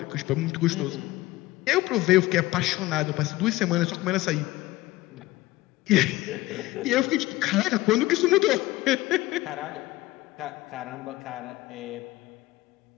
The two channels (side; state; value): right; quieter; 18.2 dB